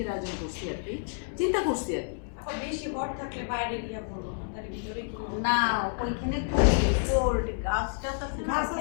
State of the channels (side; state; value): right; silent; digital silence